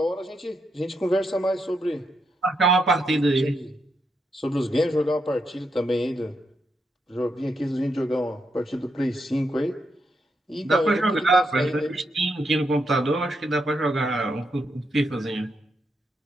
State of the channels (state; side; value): normal; both; correlation 0.81